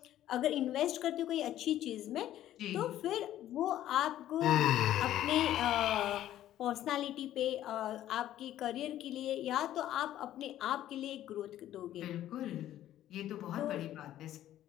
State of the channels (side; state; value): right; quieter; 12.7 dB